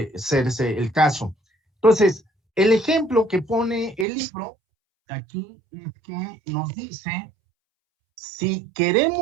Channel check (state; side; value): drops out; left; at 4.0 s